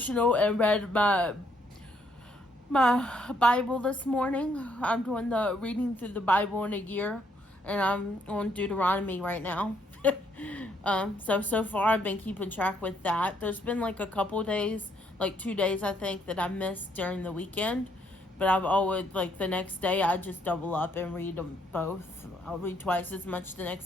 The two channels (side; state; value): both; normal; correlation 0.70